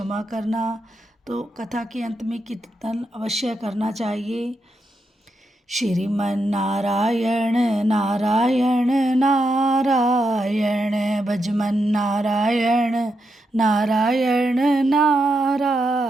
करना। तो कथा के अंत में कीर्तन अवश्य करना चाहिए। श्रीमन्नारायण नारायण नारायण भजमन नारायण नारायण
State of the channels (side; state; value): both; normal; correlation 0.84